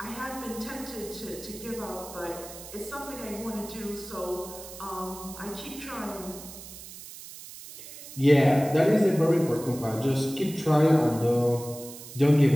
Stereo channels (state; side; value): noise; right; hiss, 14 dB below the sound